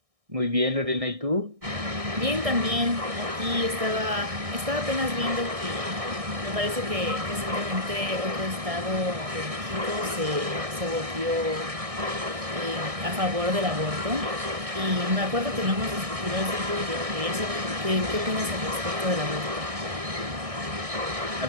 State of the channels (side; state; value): left; late; 1.6 ms